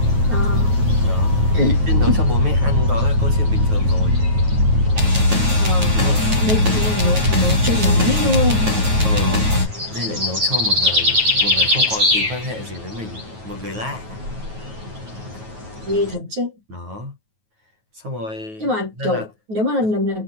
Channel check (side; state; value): left; late; 9.3 ms